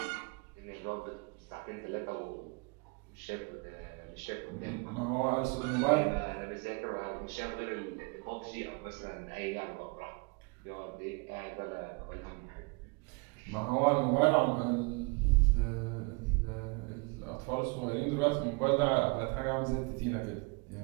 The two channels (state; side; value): quieter; left; 30.8 dB